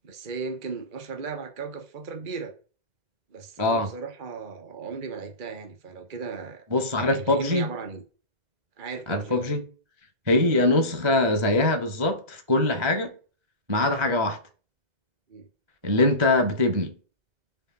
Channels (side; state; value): left; late; 2.0 ms